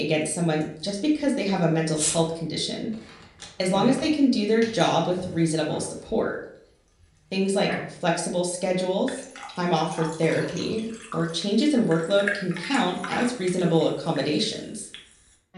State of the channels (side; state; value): both; identical; correlation 1.00